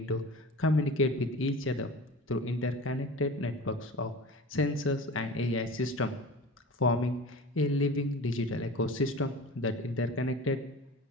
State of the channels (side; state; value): both; normal; correlation 0.36